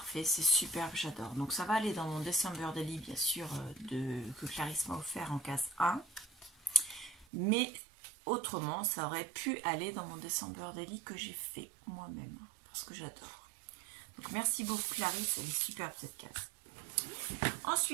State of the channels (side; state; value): left; drops out; at 7.2 s